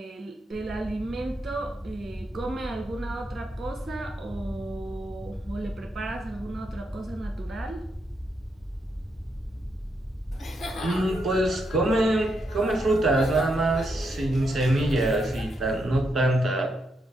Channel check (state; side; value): normal; both; correlation 0.81